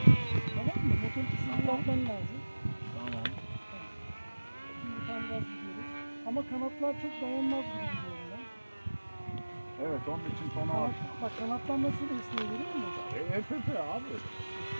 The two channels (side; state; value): both; inverted; correlation -1.00